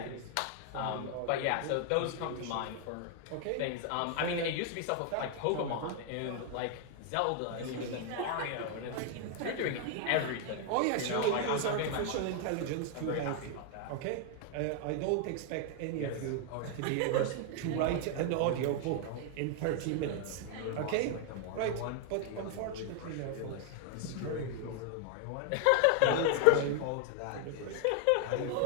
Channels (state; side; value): different; both; correlation 0.00